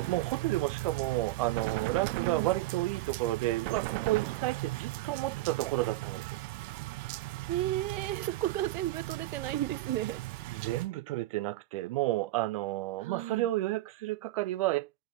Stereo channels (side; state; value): left; quieter; 16.8 dB